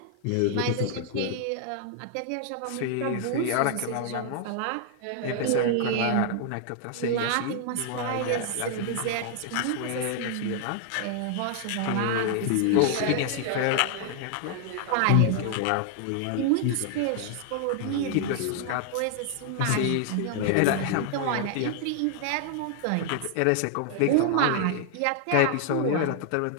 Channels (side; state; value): both; different; correlation 0.00